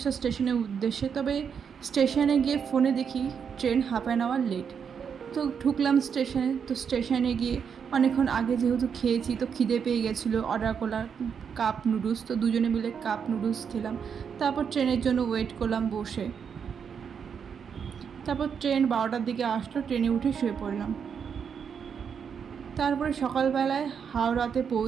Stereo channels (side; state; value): left; quieter; 7.0 dB